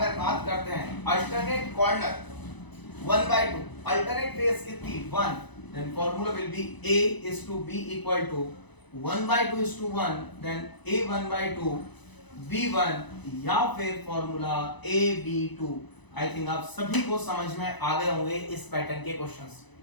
बात करते हैं अल्टरनेट कॉर्नर 1/2, अल्टरनेट फेस कितनी? 1। Then formula will be A is to B equal to 1/2 is to 1, then A 1/2 B1, या फिर फॉर्मूला AB2। आई थिंक आप सभी को समझ में आ गए होंगे इस पैटर्न के क्वेश्चंस।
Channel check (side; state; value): right; late; 1.0 ms